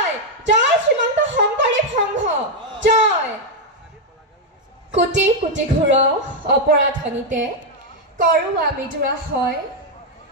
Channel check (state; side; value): normal; both; correlation 0.01